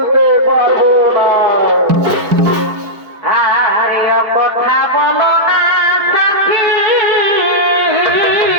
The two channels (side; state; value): left; late; 4.8 ms